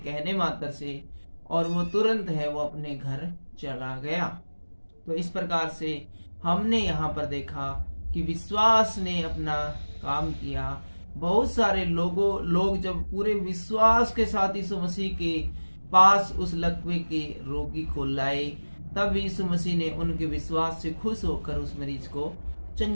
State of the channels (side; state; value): both; inverted; correlation -1.00